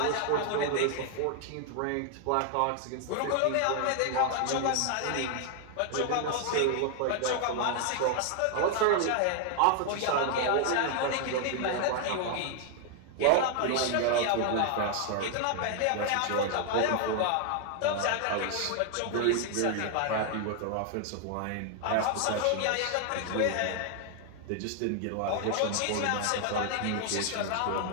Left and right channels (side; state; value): both; different; correlation 0.00